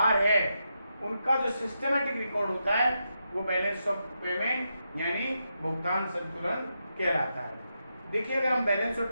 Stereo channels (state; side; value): inverted; both; correlation -0.85